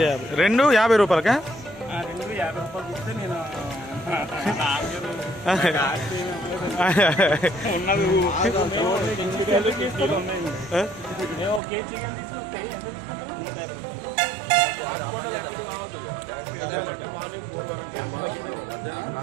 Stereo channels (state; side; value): drops out; left; at 11.6 s